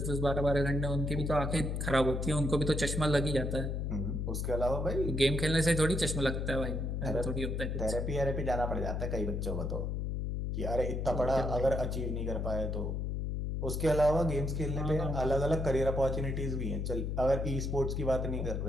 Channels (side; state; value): left; noise; hum, 1 dB below the sound